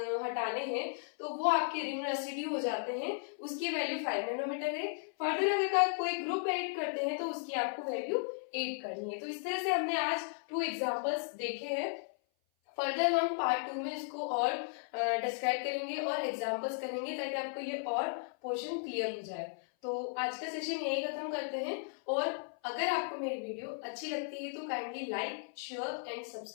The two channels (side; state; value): right; silent; 54 dB below the other